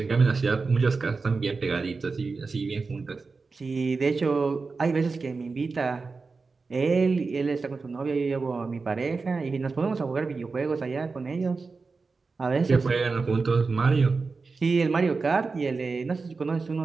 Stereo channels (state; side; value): quieter; left; 4.3 dB